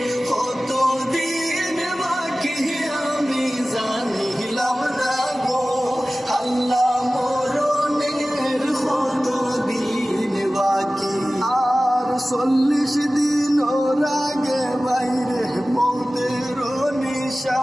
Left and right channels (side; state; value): both; normal; correlation 0.97